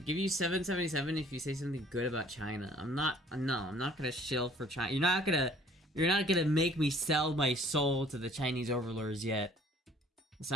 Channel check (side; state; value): both; normal; correlation 0.55